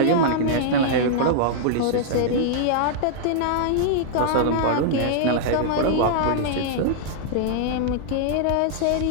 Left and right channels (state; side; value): different; both; correlation -0.01